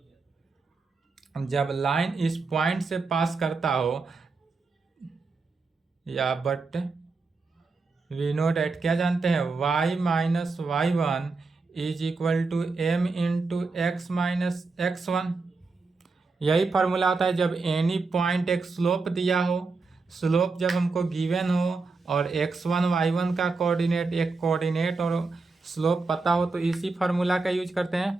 जब लाइन इस पॉइंट से पास करता हो, या बट वी नो दैट क्या जानते हैं y minus y1 is equal to m into x minus x1। यही फार्मूला होता है जब एनी पॉइंट एक स्लोप दिया हो, स्लोप जब हमको गिवन हो और x1 y1 का कोऑर्डिनेट और स्लोप पता हो, तो इसी फार्मूला का यूज करते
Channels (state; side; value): quieter; left; 4.0 dB